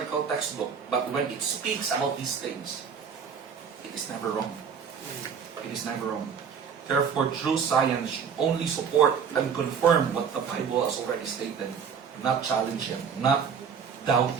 textbook, but when it speaks about these things, it is never wrong. It is never wrong. Therefore, true science should only support and confirm what the Bible has already stated, not challenge it, not doubt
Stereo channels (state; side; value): quieter; left; 6.7 dB